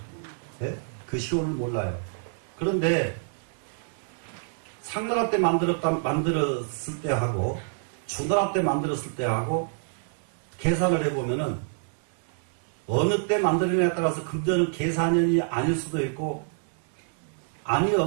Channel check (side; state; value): left; silent; digital silence